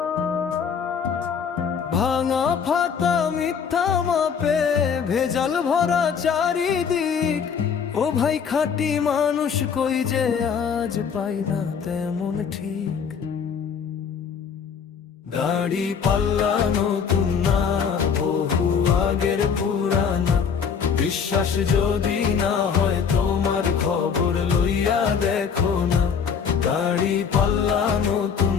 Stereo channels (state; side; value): quieter; right; 6.7 dB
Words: ভাঙা ফাতা মিথ্যা মাপে, ভেজাল ভরা চারিদিক। ও ভাই খাঁটি মানুষ কই যে আজ পাই না তেমন ঠিক। দাড়ি পাল্লা নতুন না, বহু আগের পুরানা। বিশ্বাস যদি না হয় তোমার খবর লইয়া দেখো না। দাড়ি পাল্লা নতুন